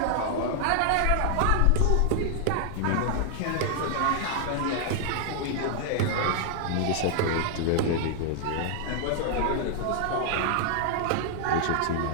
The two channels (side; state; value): both; different; correlation 0.00